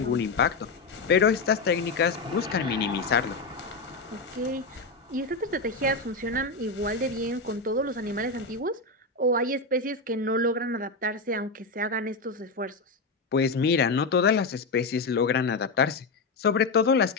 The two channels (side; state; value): right; quieter; 3.7 dB